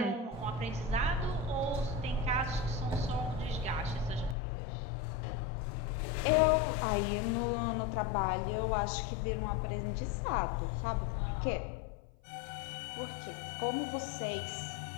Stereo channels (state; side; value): drops out; right; at 4.4 s